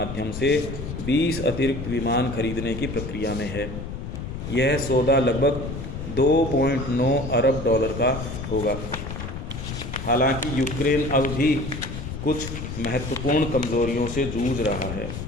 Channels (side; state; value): left; noise; rumble, 7 dB below the sound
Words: से 20 अतिरिक्त विमान खरीदने की प्रक्रिया में है। यह सौदा लगभग 2.9 अरब डॉलर का होगा। हालांकि यूक्रेन अब भी कुछ महत्वपूर्ण कमजोरियों से जूझ रहा है।